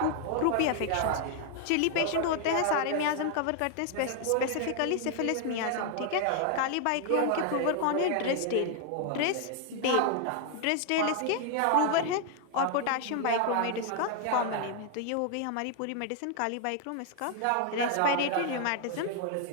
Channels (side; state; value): both; different; correlation 0.00